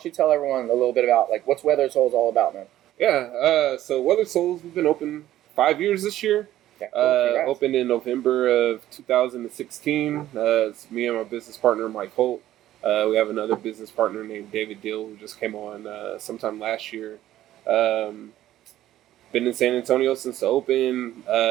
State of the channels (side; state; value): left; quieter; 13.5 dB